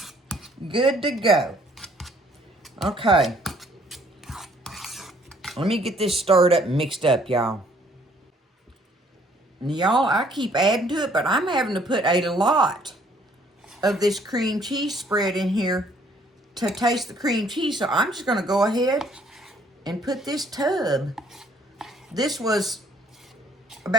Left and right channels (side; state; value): both; normal; correlation 0.62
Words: Good to go. Okay. Let me get this stirred up and mixed up, y'all. Y'all, I keep adding to it, but I'm having to put a lot of this cream cheese spread in here to taste the cream cheese. So I'm just going to go ahead and put this tub. This was